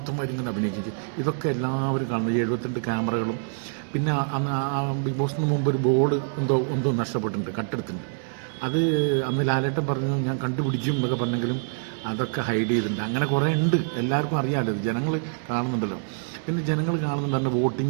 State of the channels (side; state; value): left; silent; digital silence